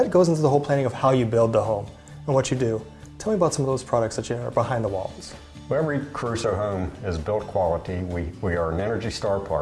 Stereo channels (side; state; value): both; identical; correlation 1.00